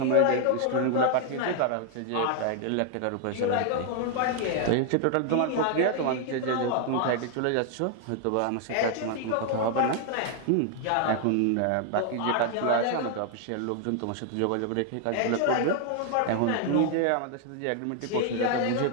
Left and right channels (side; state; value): both; different; correlation 0.00